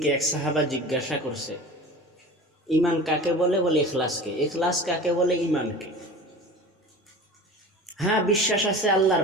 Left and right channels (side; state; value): both; normal; correlation 0.37